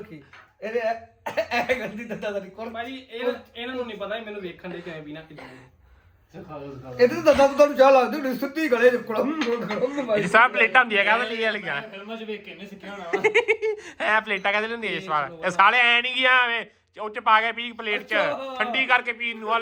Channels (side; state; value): both; identical; correlation 1.00